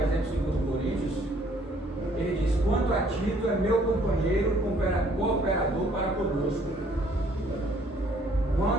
2 Coríntios, ele diz: quanto a Tito, é meu companheiro, cooperador para conosco.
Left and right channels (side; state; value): both; normal; correlation 0.62